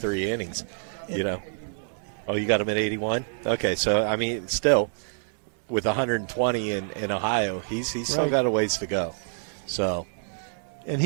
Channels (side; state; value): left; silent; 60 dB below the other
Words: innings. Oh, you got him at 81. Okay, so still with 120 in Ohio, he's still got a ways to go. So. And